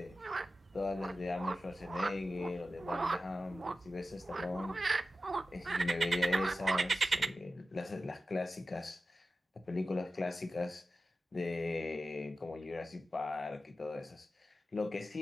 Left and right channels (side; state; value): both; normal; correlation 0.93